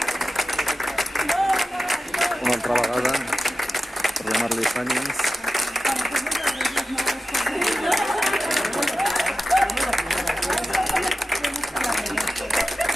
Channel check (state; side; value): normal; both; correlation 0.92